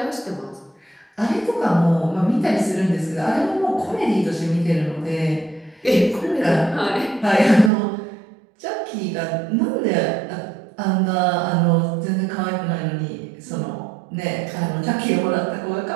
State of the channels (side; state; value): left; drops out; at 7.7 s